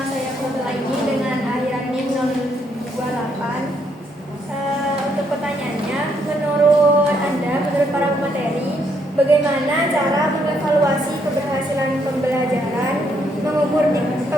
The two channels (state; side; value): normal; both; correlation 0.73